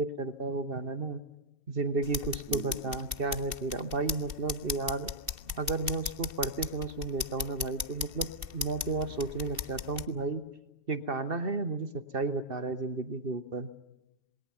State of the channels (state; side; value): late; left; 2.7 ms